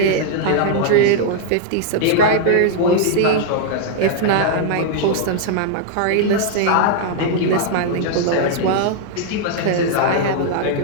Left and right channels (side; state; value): both; different; correlation 0.00